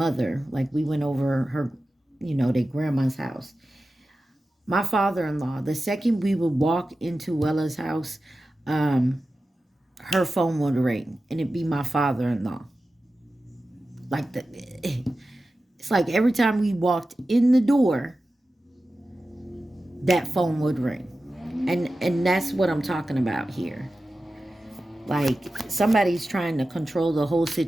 like we went over her, their grandma's house. My father-in-law, the second we would walk into Wella's house, her phone would ring and it'd be my father-in-law. It's like every time we walked in the door, that phone would ring. And that's what I'm talking about here. Like somebody's trying to control the whole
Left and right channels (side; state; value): both; normal; correlation 0.94